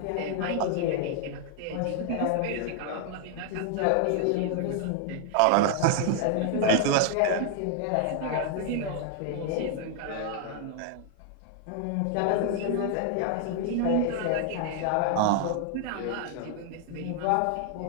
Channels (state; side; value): different; both; correlation 0.00